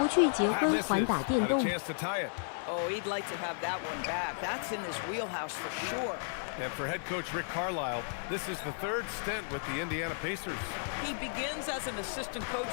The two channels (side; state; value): right; silent; 55 dB below the other